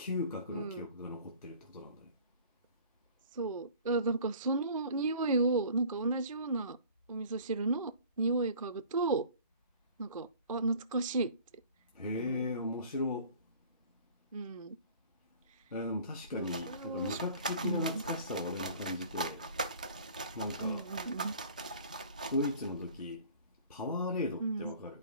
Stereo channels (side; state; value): both; inverted; correlation -0.48